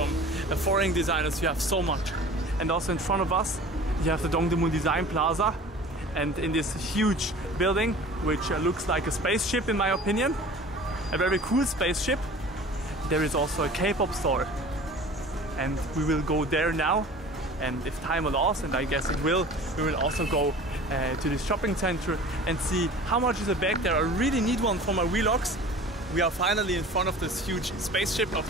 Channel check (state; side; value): normal; both; correlation 0.42